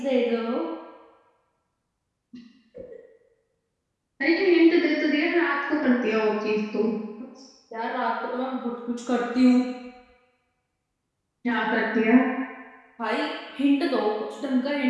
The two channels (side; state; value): both; identical; correlation 1.00